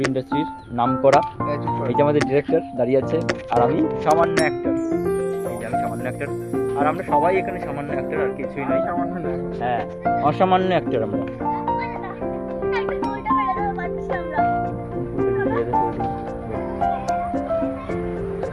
ইন্ডাস্ট্রির নাম করা। এই যে আমাদের ডিরেক্টর দাঁড়িয়ে আছে, আর আমি সামান্য অ্যাক্টর। এই যে আমি সামান্য অ্যাক্টর, আর আমরা সবাই এখানে সামান্য অ্যাক্টর, আর কিছুই নয়। সামান্য না, হ্যাঁ, অসামান্য অ্যাক্টর আমরা।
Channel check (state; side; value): identical; both; correlation 1.00